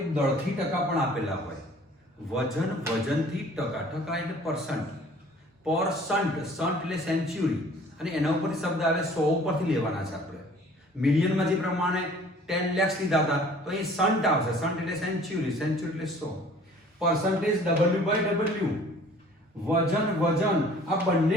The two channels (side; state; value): both; normal; correlation 0.52